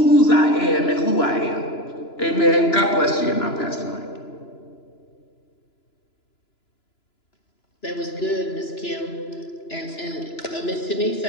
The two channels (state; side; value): late; right; 2.9 ms